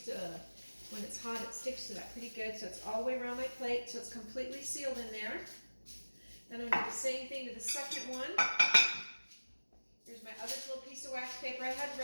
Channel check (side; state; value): both; inverted; correlation -1.00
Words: to, when it's hot, it sticks to that pretty good. So it's all the way around my plate, so it's completely sealed in there. Then I'm going to do the same thing to the second one. Here's my other little piece of wax paper I had